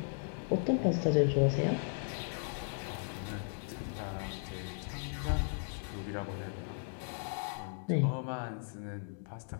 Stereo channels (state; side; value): silent; right; digital silence